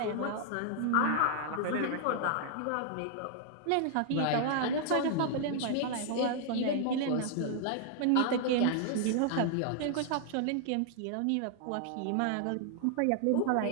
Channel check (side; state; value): both; different; correlation 0.00